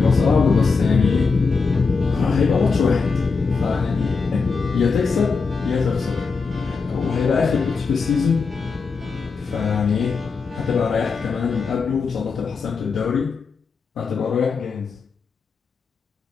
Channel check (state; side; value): quieter; right; 4.8 dB